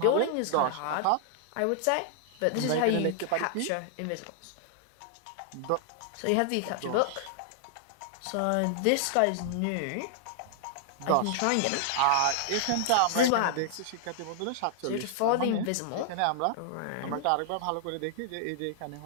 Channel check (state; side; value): different; both; correlation -0.01